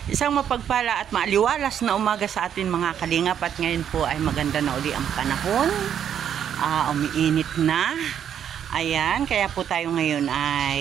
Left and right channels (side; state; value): left; quieter; 9.1 dB